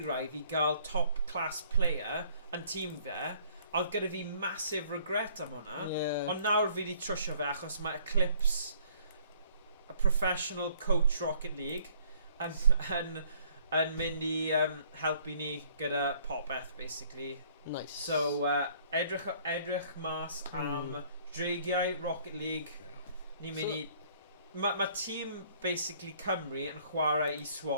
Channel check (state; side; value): inverted; both; correlation -0.60